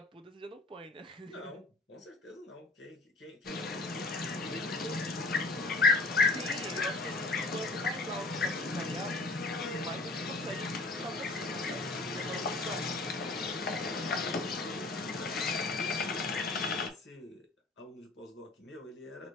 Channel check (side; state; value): right; quieter; 3.2 dB